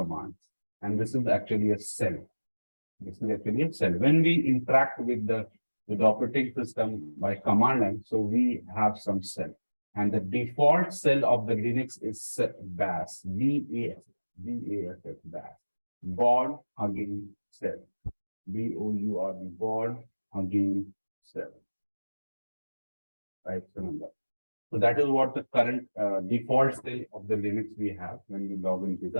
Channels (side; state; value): both; inverted; correlation -1.00